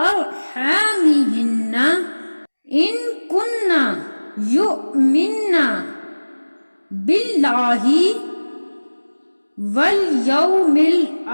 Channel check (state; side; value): inverted; both; correlation -1.00